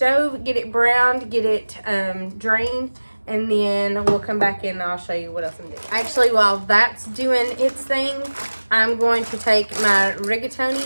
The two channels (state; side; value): inverted; both; correlation -1.00